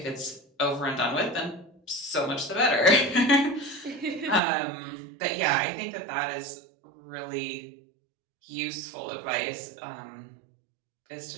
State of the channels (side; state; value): left; drops out; at 4.4 s